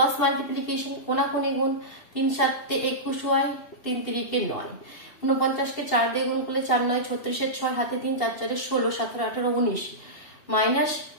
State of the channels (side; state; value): right; late; 2.7 ms